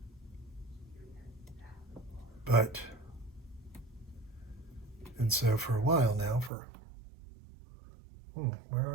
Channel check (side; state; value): left; drops out; at 6.5 s